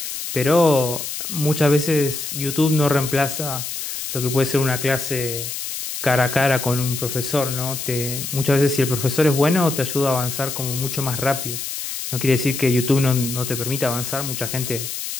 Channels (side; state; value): left; noise; hiss, 6 dB below the sound